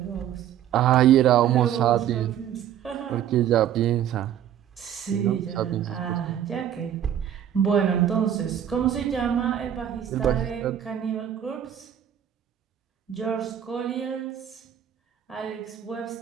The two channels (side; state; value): left; quieter; 10.2 dB